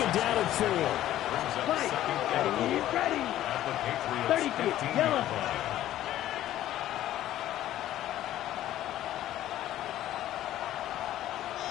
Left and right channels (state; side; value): quieter; right; 13.2 dB